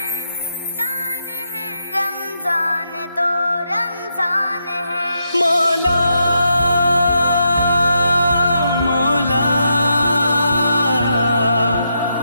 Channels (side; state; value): both; inverted; correlation -0.82